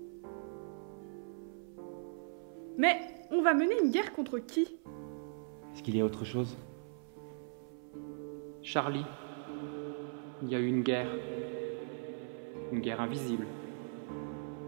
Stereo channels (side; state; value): left; silent; 52 dB below the other